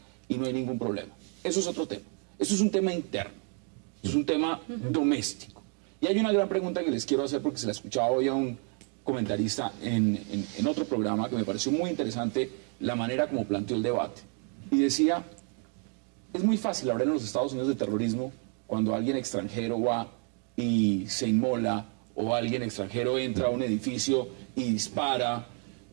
y no hay ningún problema. Eso es otro tema. Eso es un tema interno. Es un tema doméstico. Y hay una gran pregunta que les quiero hacer porque se la escuchaba hoy a un comentarista en otro programa que me pareció muy interesante la manera como planteó el debate. Y decía, es muy fácil hablar en los Estados Unidos de terrorismo cuando alguien extranjero va y se inmola o alguien extranjero entra a un edificio y dispara.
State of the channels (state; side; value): quieter; left; 39.7 dB